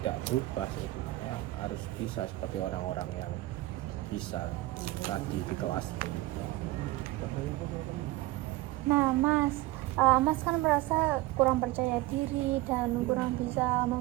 berubah seperti itu. Saya harus bisa seperti orang-orang yang bisa tadi di kelas ini. Nah Mas, Mas kan merasa kurang percaya diri dan kurang bisa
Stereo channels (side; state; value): left; quieter; 18.6 dB